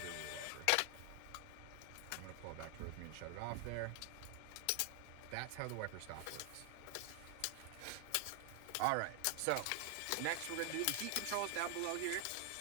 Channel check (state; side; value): different; both; correlation 0.00